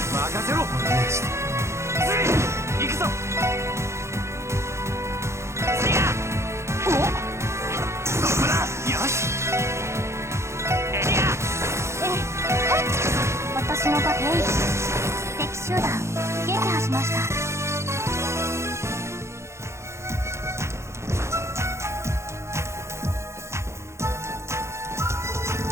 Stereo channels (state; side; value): late; left; 0.13 ms